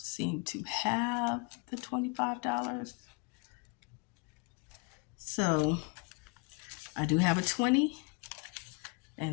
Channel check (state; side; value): quieter; right; 30.6 dB